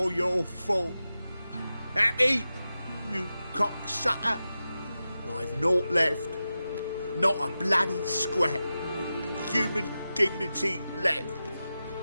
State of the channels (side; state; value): both; inverted; correlation -0.92